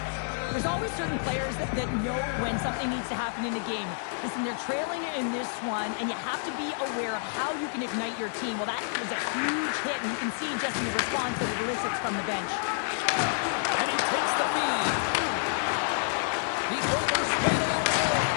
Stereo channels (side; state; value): right; silent; 59 dB below the other